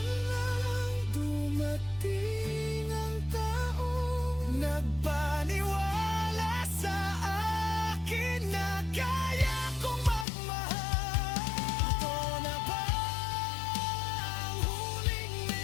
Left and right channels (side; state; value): right; drops out; at 10.2 s